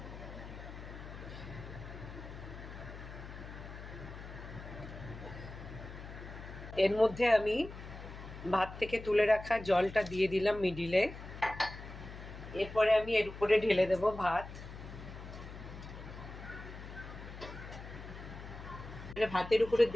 এর মধ্যে আমি ভাত থেকে তুলে রাখা জলটা দিয়ে দিলাম মিডিলে। এরপরে আমি এর উপরে ঢেলে দেব ভাত। ভাতের উপরে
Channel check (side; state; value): left; noise; hum, 12 dB below the sound